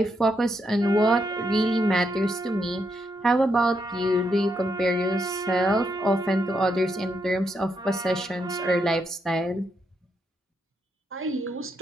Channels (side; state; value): both; normal; correlation 0.80